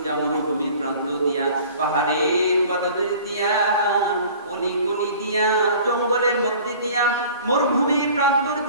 মরুভূমির প্রান্ত দিয়া, পাহাড়ের পদতলি দিয়া, অলি গলি দিয়া, জঙ্গলের মধ্যে দিয়া, মরুভূমির প্রান্তর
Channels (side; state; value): both; inverted; correlation -0.46